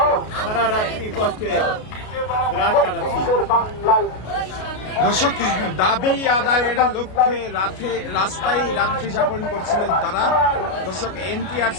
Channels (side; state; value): right; late; 33 ms